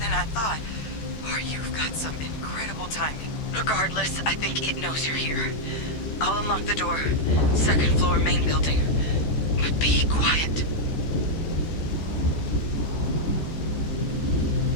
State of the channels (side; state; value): right; late; 14 ms